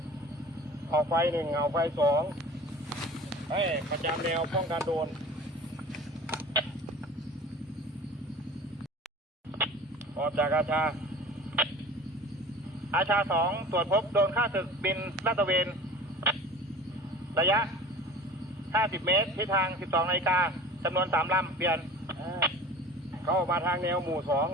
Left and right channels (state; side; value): normal; both; correlation 0.41